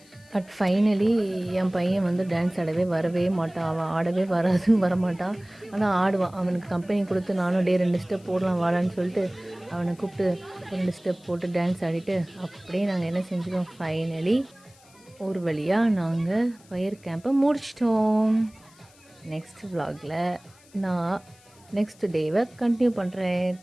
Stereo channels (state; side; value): noise; left; hiss, 27 dB below the sound